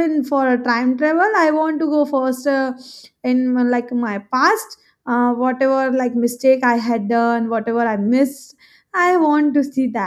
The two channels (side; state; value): both; identical; correlation 1.00